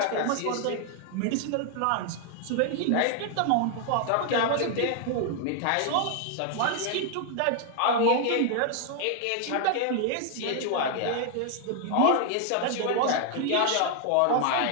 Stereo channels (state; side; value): different; both; correlation 0.00